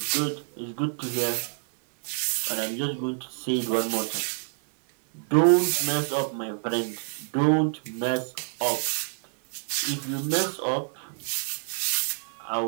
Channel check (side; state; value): left; silent; 59 dB below the other